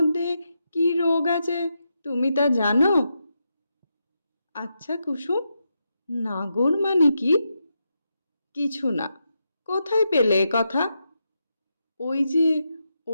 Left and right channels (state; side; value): inverted; both; correlation -0.85